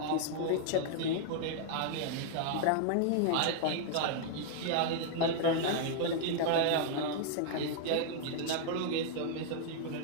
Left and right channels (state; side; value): different; both; correlation -0.01